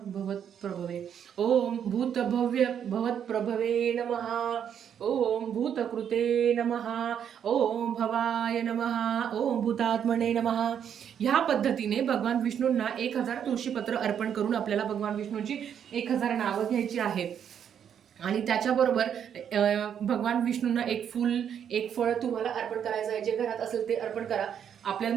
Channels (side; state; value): left; quieter; 8.6 dB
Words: ओम भूतभव्य भवत्प्रभवे नमः, ओम भूतकृते नमः, ओम भवाय नमः, ओम भूतात्मने नमः. ह्या पद्धतीने भगवान विष्णूंना 1000 तुळशीपत्र अर्पण करून आपल्याला भगवान विष्णूंची 1000 नावं घ्यायची आहेत. आणि त्याच्याबरोबर भगवान विष्णूंना एक फूल एक फळ तुम्हाला अर्पण करायचं आहे. जे घरात असेल ते अर्पण करा. आपल्याला